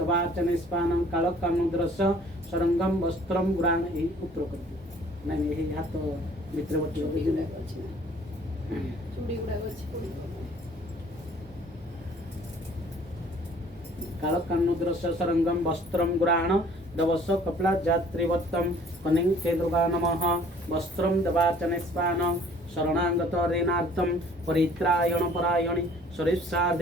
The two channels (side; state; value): both; normal; correlation 0.55